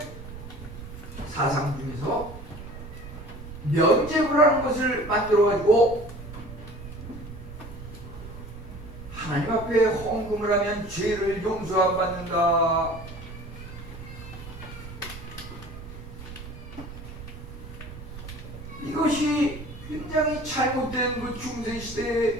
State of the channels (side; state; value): right; noise; rumble, 12 dB below the sound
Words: 사상 중에서 면죄부라는 것을 만들어가지고 하나님 앞에 헌금을 하면 죄를 용서 안 받는다. 이것이 굉장히 잘못된 그